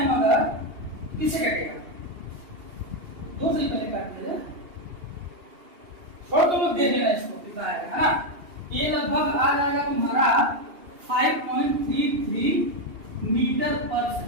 अगर किससे काटेगा, 2 से पहले काट दीजिए, छोड़ तो लोग दे देना इसको, कितना आएगा, है ना। ये लगभग आ जाएगा तुम्हारा 5.33 मीटर पर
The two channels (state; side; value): late; left; 2.8 ms